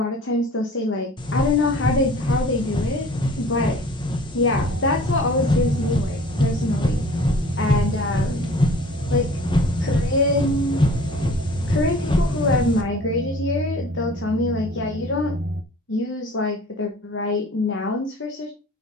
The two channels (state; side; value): normal; both; correlation 0.47